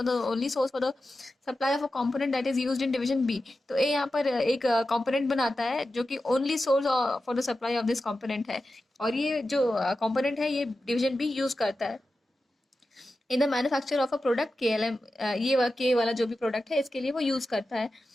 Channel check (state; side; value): normal; both; correlation 0.92